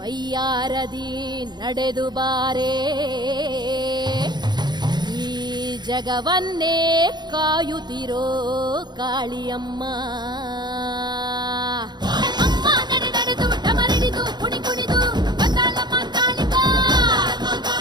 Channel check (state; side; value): late; left; 0.21 ms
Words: ನಡೆದು ಬಾರೆ ಈ ಜಗವನ್ನೇ ಕಾಯುತ್ತಿರೋ ಕಾಳಿಯಮ್ಮ. ಅಮ್ಮ ನಡೆ ನಡೆದು ಡಮರಿಡಿದು ಕುಣಿ ಕುಣಿದು ಬಂದಾಳಮ್ಮ ಕಾಳಿಕಾ,